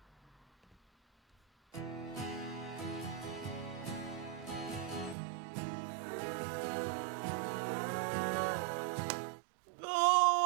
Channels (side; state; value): left; drops out; at 5.2 s